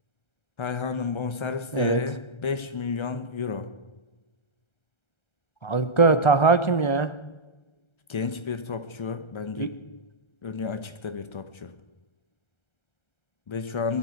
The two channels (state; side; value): late; right; 1.3 ms